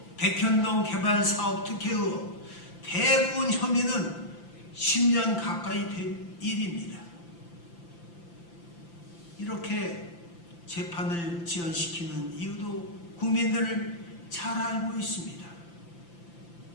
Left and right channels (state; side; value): late; right; 5.9 ms